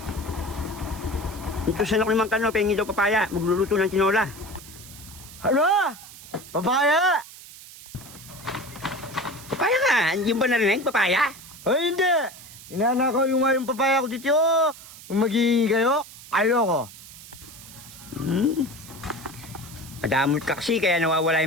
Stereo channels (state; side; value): noise; right; hiss, 17 dB below the sound